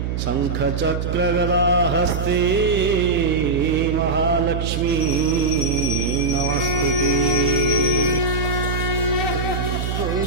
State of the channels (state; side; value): noise; right; hum, 2 dB below the sound